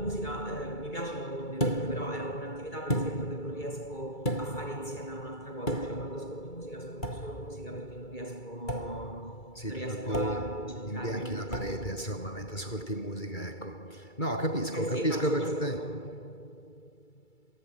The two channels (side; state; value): right; late; 2.3 ms